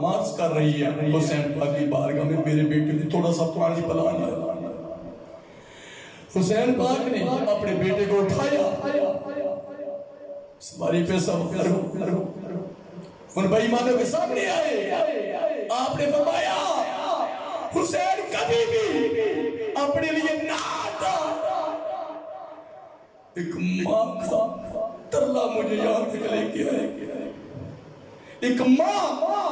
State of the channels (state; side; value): identical; both; correlation 1.00